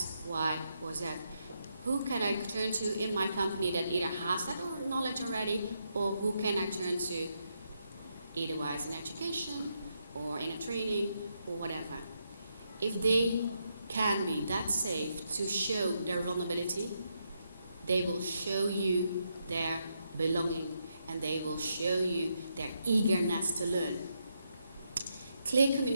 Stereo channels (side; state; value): both; inverted; correlation -0.80